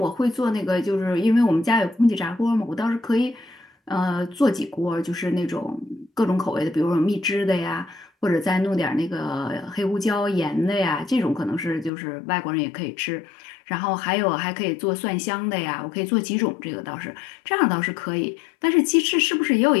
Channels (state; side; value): drops out; right; at 11.9 s